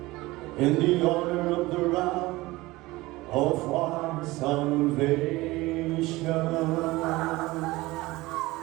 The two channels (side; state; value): left; quieter; 20.0 dB